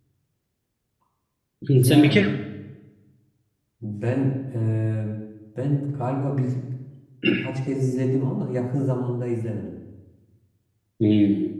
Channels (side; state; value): both; identical; correlation 1.00